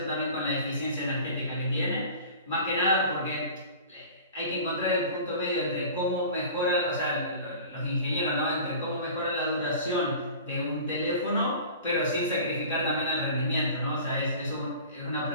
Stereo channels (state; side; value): inverted; both; correlation -0.41